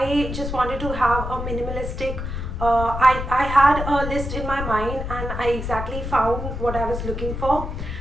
just wanted to have a minimalistic I had a list in my mind and I exactly found what I was looking for.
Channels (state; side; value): noise; left; rumble, 5 dB below the sound